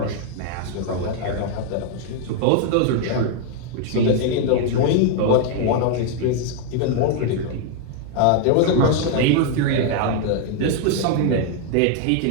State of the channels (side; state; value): both; different; correlation 0.00